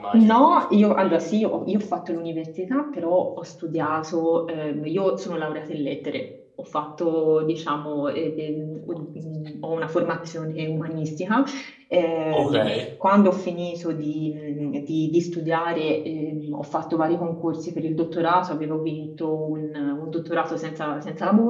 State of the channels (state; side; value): identical; both; correlation 1.00